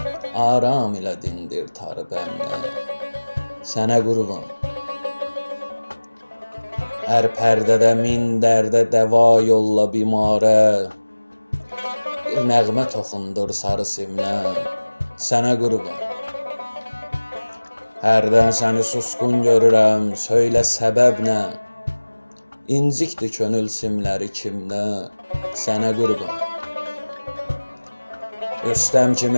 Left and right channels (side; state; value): both; inverted; correlation -1.00